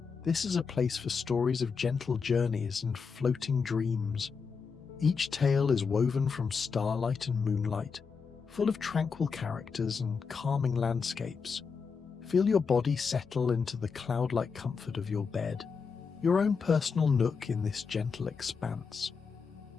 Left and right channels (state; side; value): quieter; right; 5.5 dB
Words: This is a place for stories of gentle journeys and floating dreams. Each tale is woven from starlight and moonlight, full of tranquil characters and calming landscapes. Feel your body settle into the cloud-like comfort of your bed, your own personal nook in this gentle expanse.